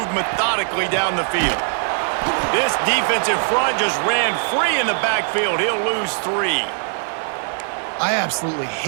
methodically down the field. This defensive front just ran free in the backfield. He'll lose 3. I absolutely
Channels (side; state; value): left; silent; 65 dB below the other